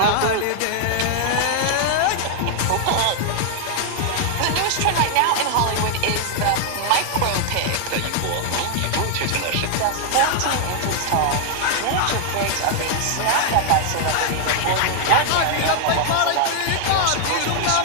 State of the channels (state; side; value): different; both; correlation 0.00